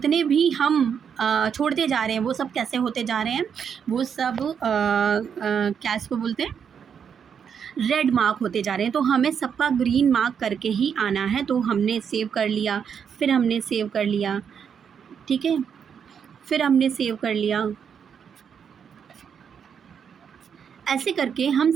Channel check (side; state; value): left; quieter; 7.3 dB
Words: भी हम छोड़ते जा रहे हैं वो सब कैसे होते जा रहे हैं, वो सब क्या इसको बोलते हैं, रेड मार्क होते जा रहे हैं। तो हमें सबका ग्रीन मार्क करके ही आना है। तो हमने सेव कर लिया, फिर हमने सेव कर लिया। ठीक है, फिर हमने सेव कर लिया। ऐसे करके हम